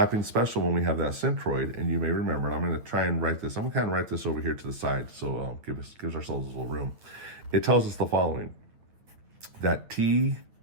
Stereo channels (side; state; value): left; late; 9.2 ms